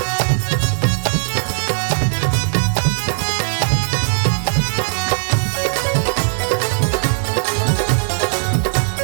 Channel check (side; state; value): left; silent; 66 dB below the other